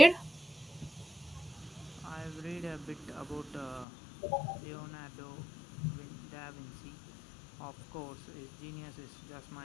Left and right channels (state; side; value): drops out; right; at 3.9 s